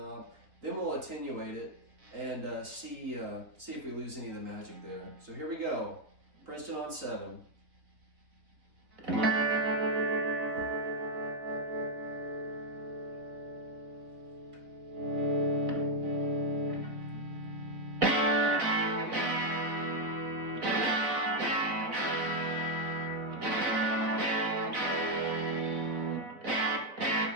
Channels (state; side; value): late; left; 3.7 ms